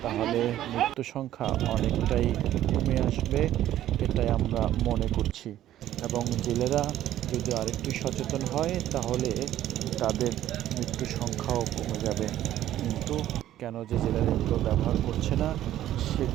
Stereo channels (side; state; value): left; quieter; 12.7 dB